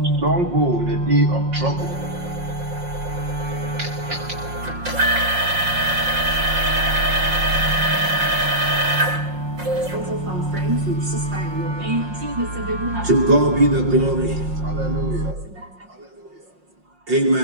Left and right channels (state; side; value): late; left; 5.6 ms